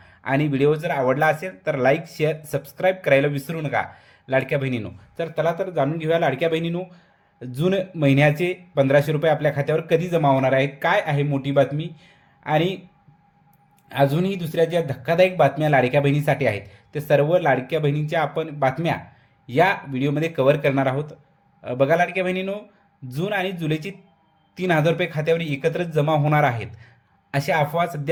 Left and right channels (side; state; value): both; identical; correlation 1.00